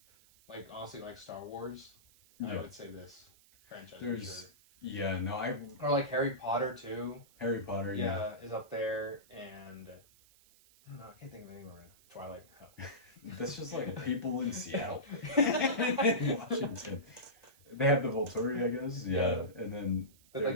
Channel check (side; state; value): right; noise; hiss, 27 dB below the sound